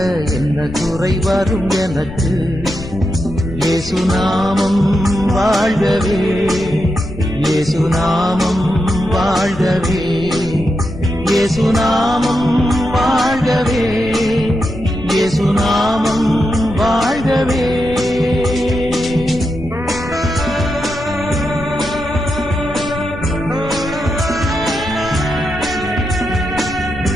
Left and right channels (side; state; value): left; noise; rumble, 12 dB below the sound